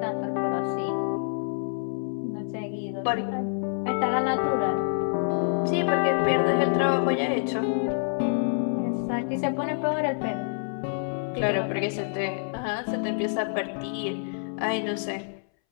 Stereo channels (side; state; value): right; silent; 60 dB below the other